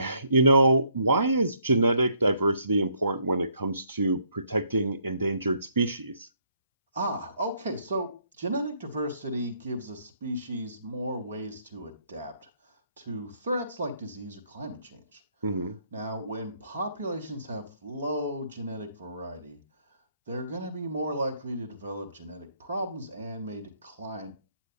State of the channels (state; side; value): inverted; both; correlation -0.69